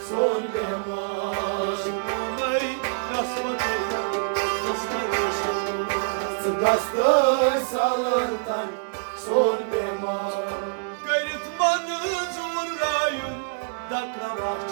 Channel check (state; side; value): silent; left; 56 dB below the other